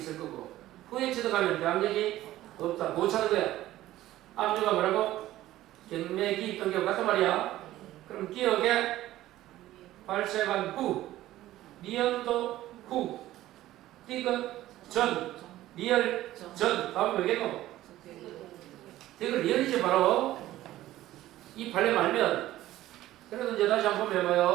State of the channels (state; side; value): quieter; left; 14.9 dB